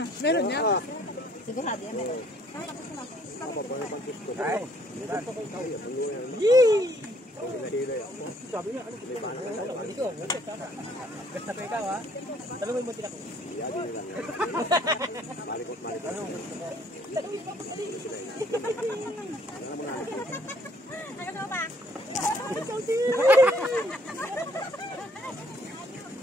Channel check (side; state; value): both; normal; correlation 0.63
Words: Meron niya? Sigurado yan meron. Sabi niya, ano? Ito. Gasta pa ikaw ha? Sabi mo yung munti ako. Malikot. Ano ba?